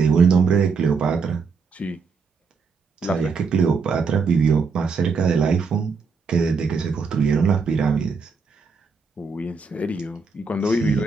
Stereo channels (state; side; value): quieter; left; 5.0 dB